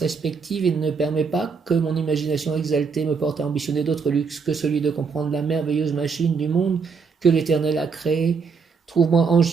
et ne permet pas que mon imagination exaltée me porte à ambitionner d'autres luxes que celui de comprendre la merveilleuse machine du monde que l'Éternel a créée. Trouve-moi,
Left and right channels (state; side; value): quieter; left; 5.4 dB